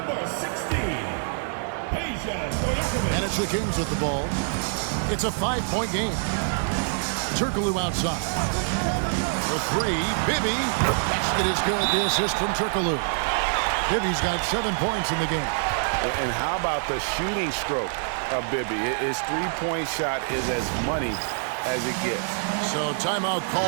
16, And it's the Kings with the ball. It's a 5-point game. Turkoglu outside. For 3, Bibby. The basket is good. The assist from Turkoglu. Bibby's got 7 points in the game. And how about the shooting stroke of Bibby? His 3-point shot is as money as it gets. So timeout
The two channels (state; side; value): silent; left; digital silence